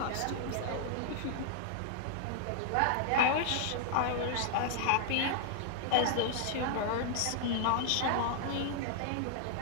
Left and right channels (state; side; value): different; both; correlation -0.01